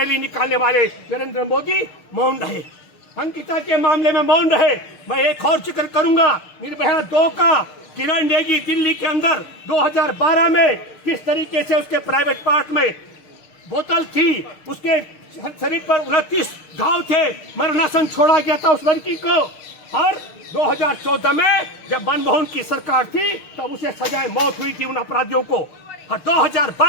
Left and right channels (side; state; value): right; late; 6.5 ms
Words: निकालने वाले नरेंद्र मोदी मौन रहे। अंकिता के मामले में मौन रहे। मैं एक और जिक्र करूंगा, निर्भया 2 का किरण नेगी दिल्ली के अंदर 2012 में किस तरीके से उसके प्राइवेट पार्ट में बोतल थी, उसके शरीर पर 29 घाव थे, मरणासन छोड़ा गया था उस लड़की को। और 2014 में जब मनमोहन की सरकार थी तब उसे सजाए मौत हुई थी उन अपराधियों को। और